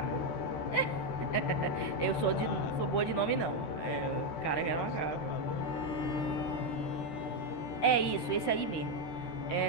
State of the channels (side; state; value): right; late; 13 ms